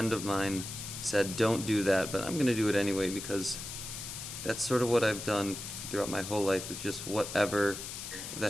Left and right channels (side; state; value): left; noise; hiss, 8 dB below the sound